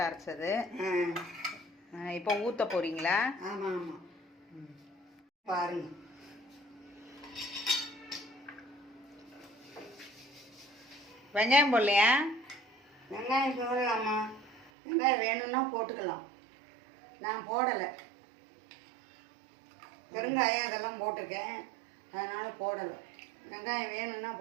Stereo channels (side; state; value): left; drops out; at 14.7 s